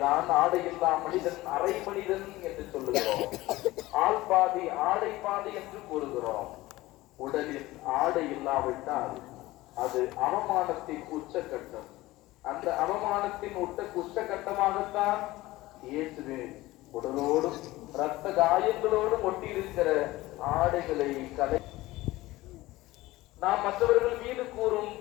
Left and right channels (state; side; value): quieter; right; 18.4 dB